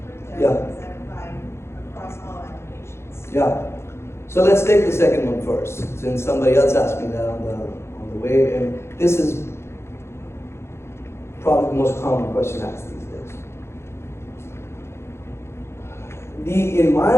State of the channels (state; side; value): late; right; 0.13 ms